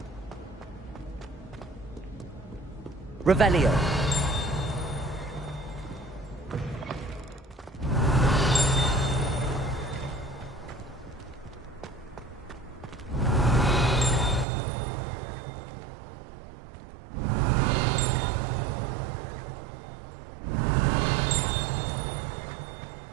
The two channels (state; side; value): drops out; left; at 14.5 s